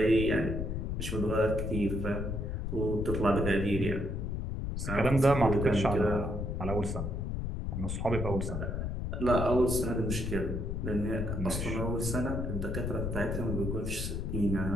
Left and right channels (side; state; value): left; noise; rumble, 2 dB below the sound